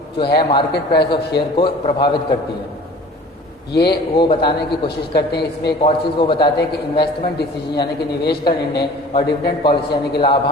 जो है मार्केट प्राइस ऑफ शेयर को प्रभावित करती है, ये वो बताने की कोशिश करते हैं। इसमें एक और चीज़ वो बताते हैं कि इन्वेस्टमेंट डिसीजन यानी कि निवेश का निर्णय और डिविडेंड पॉलिसी यानी कि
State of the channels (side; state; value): both; normal; correlation 0.45